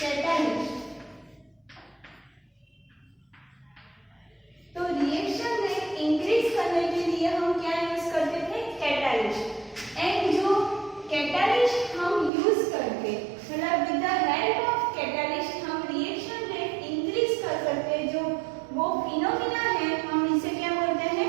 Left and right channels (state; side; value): drops out; left; at 12.3 s